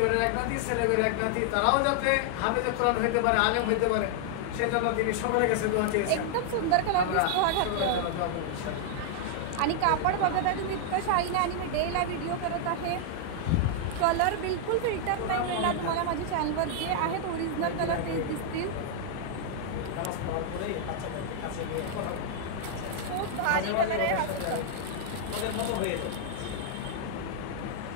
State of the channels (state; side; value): different; both; correlation -0.01